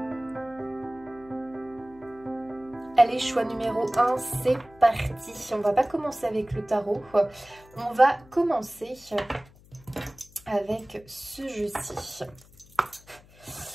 Allez, choix numéro 1, c'est parti. On va pas commencer avec le tarot. On va commencer avec ce jeu-ci.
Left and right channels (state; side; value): noise; left; hum, 25 dB below the sound